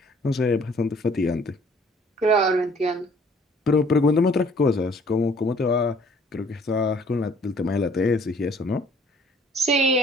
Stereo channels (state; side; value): normal; both; correlation 0.57